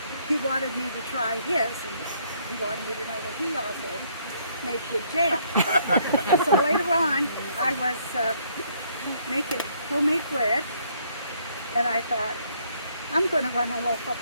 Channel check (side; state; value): both; inverted; correlation -0.67